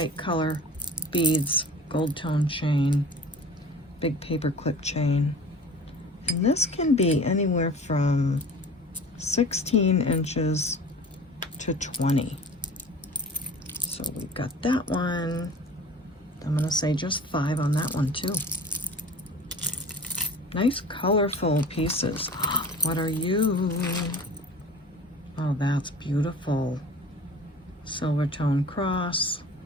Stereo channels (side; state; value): both; normal; correlation 0.41